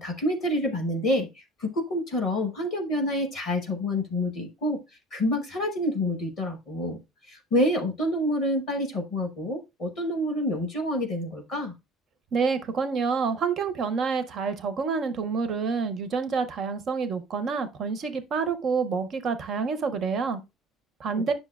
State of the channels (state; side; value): normal; both; correlation 0.42